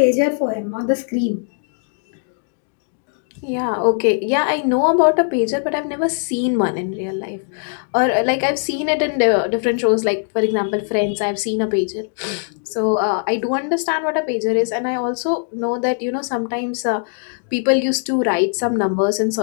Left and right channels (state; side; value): silent; right; 65 dB below the other